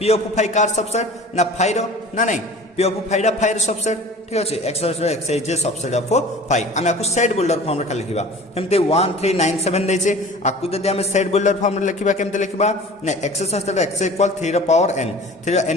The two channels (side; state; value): both; normal; correlation 0.42